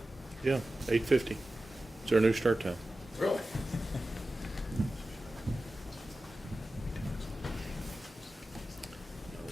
Yeah, 8:50. It's our new start time. Really?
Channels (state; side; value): normal; both; correlation 0.94